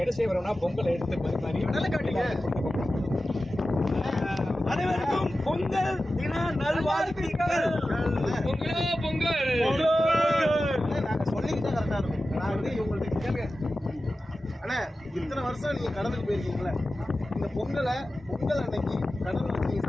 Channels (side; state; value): both; normal; correlation 0.94